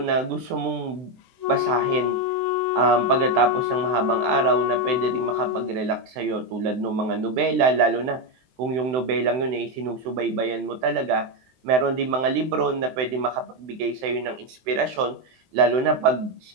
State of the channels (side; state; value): left; late; 23 ms